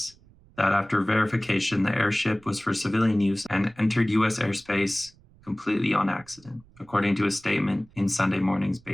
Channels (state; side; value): noise; right; rumble, 27 dB below the sound